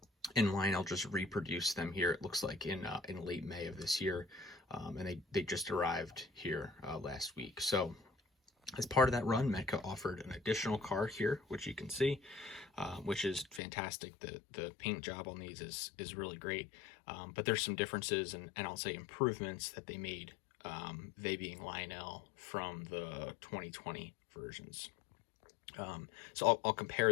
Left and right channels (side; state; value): right; drops out; at 13.6 s